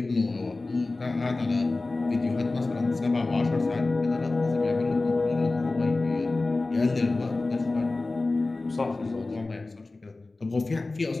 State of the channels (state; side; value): quieter; right; 3.3 dB